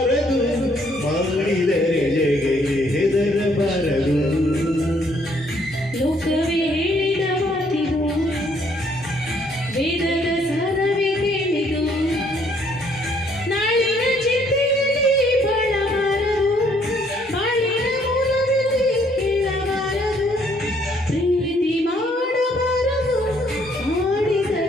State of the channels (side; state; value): both; normal; correlation 0.66